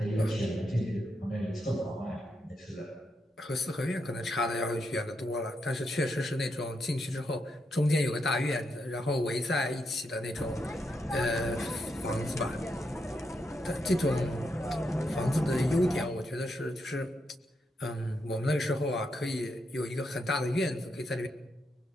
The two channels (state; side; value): normal; both; correlation 0.82